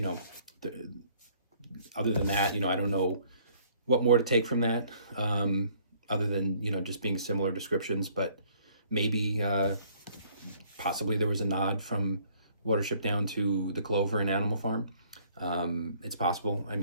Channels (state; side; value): inverted; both; correlation -0.61